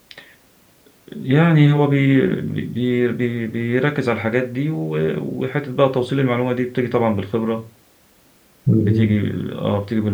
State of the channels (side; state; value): both; identical; correlation 1.00